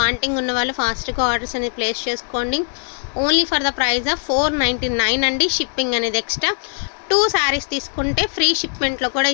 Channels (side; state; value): right; silent; 60 dB below the other